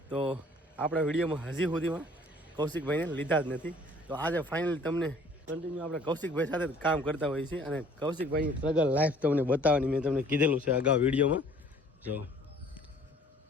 તો આપણા વિડીયોમાં હજી સુધીમાં કૌશિકભાઈને લીધા જ નથી। તો આજે ફાઇનલી તમને કન્ટિન્યુ આપણે કૌશિકભાઈ સાથે કામ કરતા હોઈએ છીએ અને કૌશિકભાઈની સ્ટ્રગલ લાઈફ તમને બતાવવાની મેં તમને કીધેલું છે અગાઉ વિડીયોમાં જો।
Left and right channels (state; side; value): normal; both; correlation 0.54